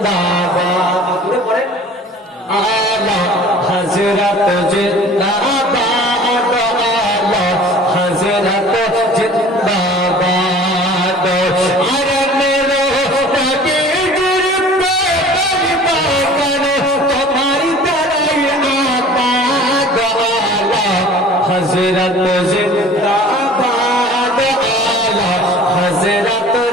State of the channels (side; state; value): both; normal; correlation 0.46